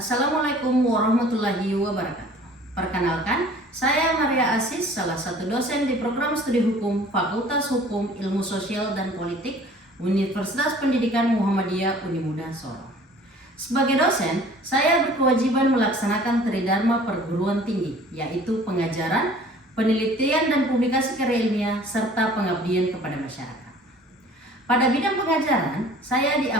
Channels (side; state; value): both; normal; correlation 0.50